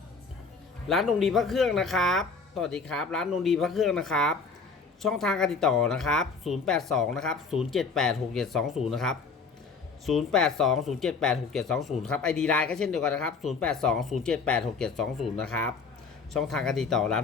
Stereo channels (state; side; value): quieter; right; 4.7 dB